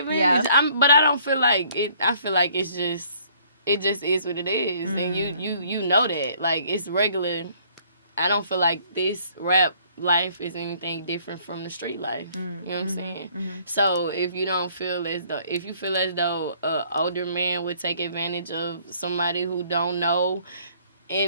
But I don't feel like it. I feel like it just is what it is. And you know that. Like, it's regular I don't feel like this rap life is anything different from the street life. You know what I'm saying? So if you don't feel as though, if you feel as though a older man would take advantage of somebody who don't know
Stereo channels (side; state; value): both; inverted; correlation -0.60